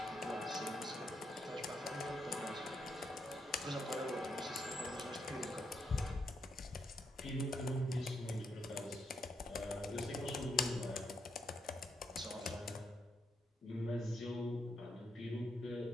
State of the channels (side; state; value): both; normal; correlation 0.80